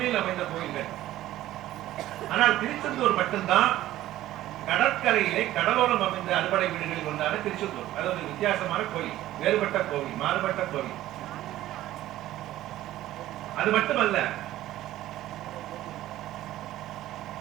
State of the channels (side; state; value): left; quieter; 14.5 dB